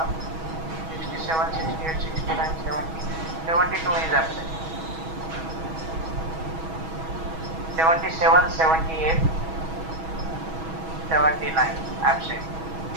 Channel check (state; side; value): late; left; 6.2 ms